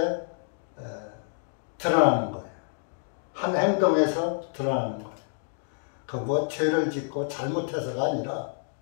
드러나는 거예요. 한 행동에서 드러나는 거예요. 그 뭐 죄를 짓고 잘못해서가 아니라,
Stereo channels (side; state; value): right; silent; digital silence